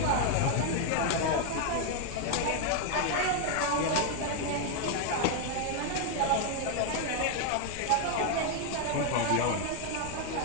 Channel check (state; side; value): different; both; correlation 0.01